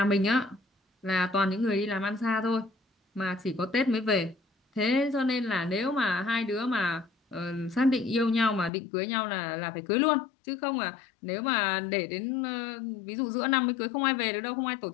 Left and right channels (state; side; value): drops out; right; at 8.7 s